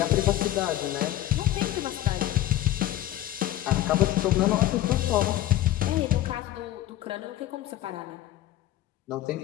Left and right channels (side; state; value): right; quieter; 14.0 dB